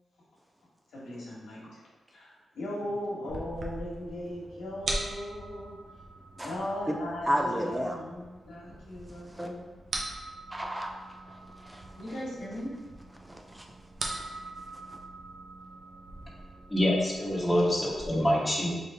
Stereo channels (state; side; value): normal; both; correlation 0.91